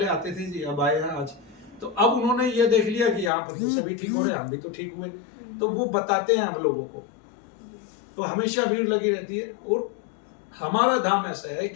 आते थे जी, अब आए हैं आज। तो अब उन्होंने ये देख लिया कि यहाँ पर तो सभी ठीक हो रहे हैं, हम भी तो ठीक हुए, तो वो बताते हैं हम लोगों को। तो हमेशा भीड़ लगी रहती है। और हमारा धाम ऐसा है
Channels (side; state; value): right; drops out; at 3.3 s